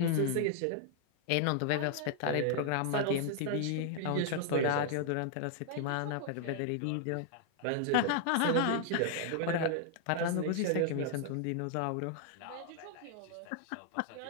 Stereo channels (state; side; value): different; both; correlation 0.00